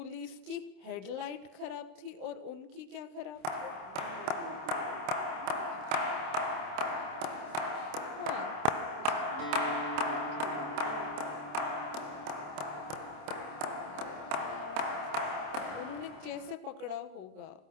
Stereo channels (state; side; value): late; left; 27 ms